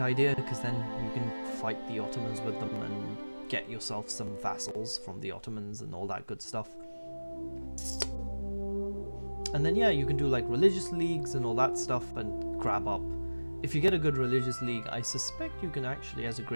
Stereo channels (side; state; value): both; inverted; correlation -1.00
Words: idea, because then you can fight the Ottomans with them and get yourself some vassals from the Ottomans and all that good stuff. And then yeah, you can do like religious leagues and all that stuff and grab up. If you get a good religious league, I suspect you can actually, as a